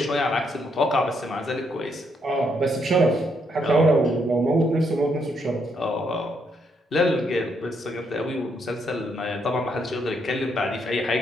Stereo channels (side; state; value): both; normal; correlation 0.75